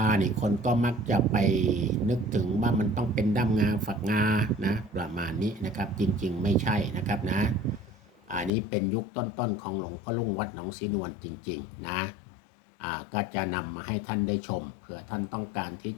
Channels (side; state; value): right; drops out; at 8.5 s